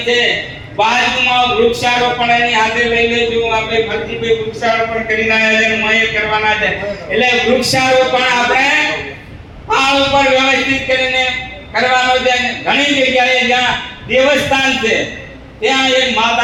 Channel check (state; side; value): identical; both; correlation 1.00